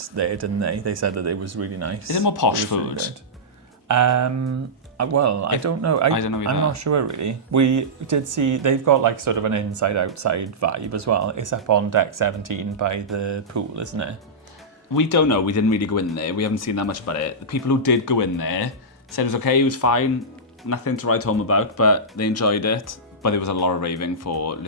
there, didn't they? They said that it was really nice. Is it more posh It was really food? good. I don't know. I don't know either. I'm not sure really. We did see, they've got like sort of an inside-outside vibe as well. It's up on deck 17 by the pool, isn't it? We don't know. We didn't really go in there. We haven't seen that much about it. The people who did go in there said it was okay, it was fine, nothing to write home about, but they enjoyed it. But there was a lot of raving for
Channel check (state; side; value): normal; both; correlation -0.13